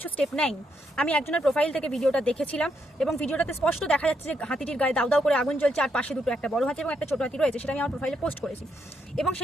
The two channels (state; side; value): normal; both; correlation 0.77